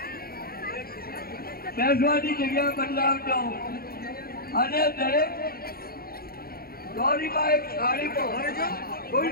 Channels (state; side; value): late; right; 0.44 ms